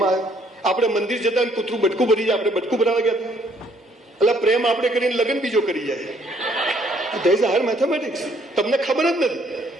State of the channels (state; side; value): normal; both; correlation 0.65